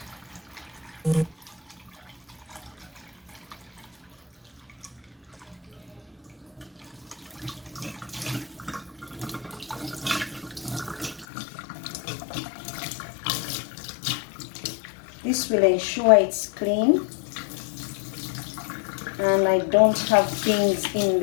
This will ensure it's clean and I don't have things in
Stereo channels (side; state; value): right; drops out; at 11.2 s